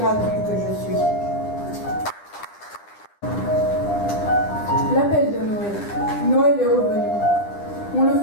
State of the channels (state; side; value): late; right; 9.9 ms